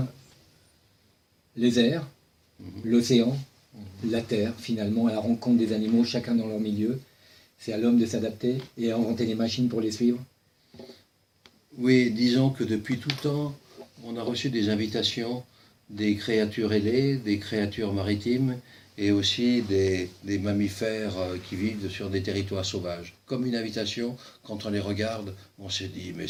les airs, l'océan, la terre, finalement, à la rencontre des animaux, chacun dans leur milieu. C'est à l'homme de s'adapter et à inventer les machines pour les suivre. Oui, disons que depuis tout temps, on a reçu des invitations des créatures ailées, des créatures maritimes et aussi des mammifères qui vivent sur des territoires sauvages. Comme une invitation, quand on les regarde, on se dit mais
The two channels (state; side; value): identical; both; correlation 1.00